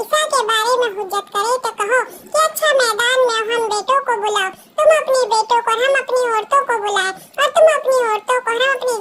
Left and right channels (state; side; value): identical; both; correlation 1.00